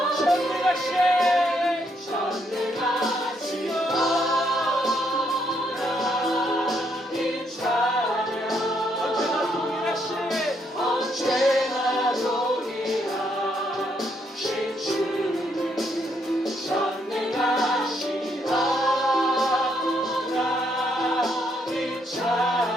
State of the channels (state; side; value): normal; both; correlation 0.74